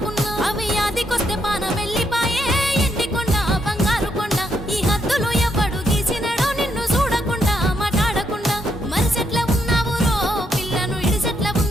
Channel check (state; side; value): normal; both; correlation 0.77